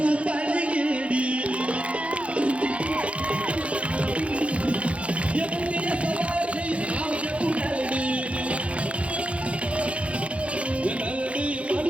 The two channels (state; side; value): late; left; 0.062 ms